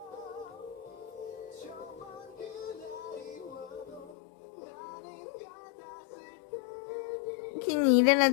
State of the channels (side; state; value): right; drops out; at 4.2 s